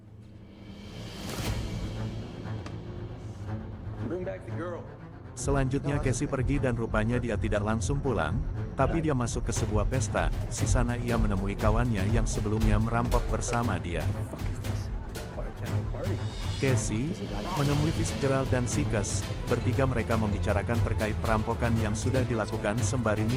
Selanjutnya Casey pergi dan rupanya dia tidak langsung pulang, tapi dia masuk ke sebuah pesta. Di sana ia menemui kawannya yang sebelumnya merampok bersama dia. Party. Casey menemui Fitzgerald dan Sikes. Bertiga mereka membicarakan terkait perampokan yang sudah dilakukan sembari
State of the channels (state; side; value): identical; both; correlation 1.00